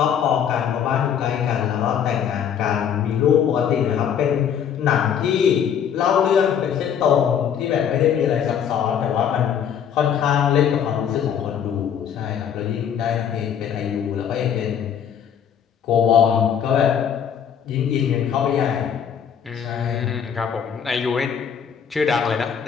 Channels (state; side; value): quieter; right; 8.3 dB